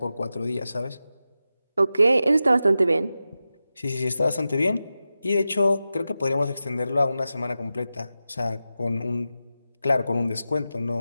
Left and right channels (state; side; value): inverted; both; correlation -0.92